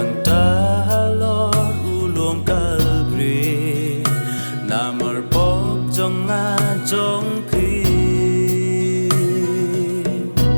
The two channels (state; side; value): inverted; both; correlation -1.00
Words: ta Lord u luom Calvary na mar bok trong nga trong phi